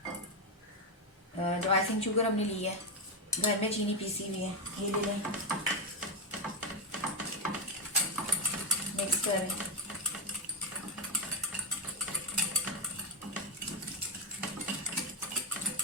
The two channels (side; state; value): both; normal; correlation 0.07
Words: जो आइसिंग शुगर हमने ली है, घर में चीनी पीसी हुई है, ये ले लें। मिक्स करें।